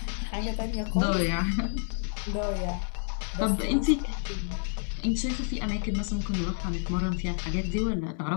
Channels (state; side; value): silent; right; digital silence